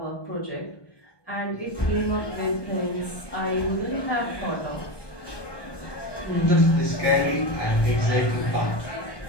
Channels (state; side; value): late; right; 1.2 ms